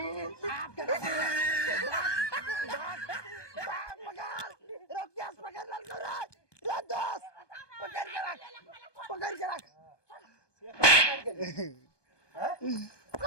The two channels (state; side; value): late; right; 1.2 ms